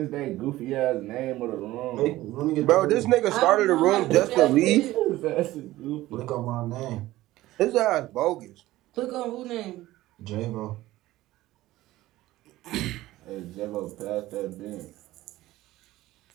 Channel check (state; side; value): quieter; left; 16.6 dB